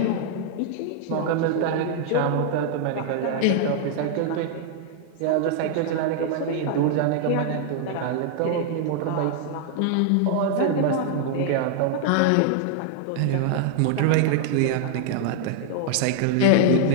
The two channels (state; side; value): different; both; correlation 0.00